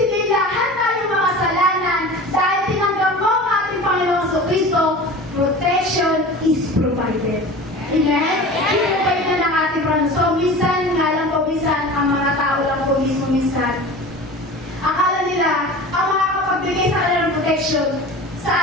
lahat tayo makasalanan dahil tinanggap mo ang ating Panginoong Jesucristo, protection is provided. Amen? I-provide na ng ating Panginoon. So, minsan, nga lang po, minsan, ang mga tao lang po mismo minsan, akala nila, ang makakapagbigay sa kanila ng protection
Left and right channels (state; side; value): normal; both; correlation 0.36